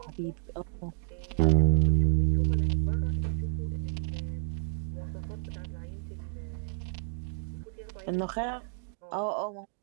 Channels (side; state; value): left; silent; digital silence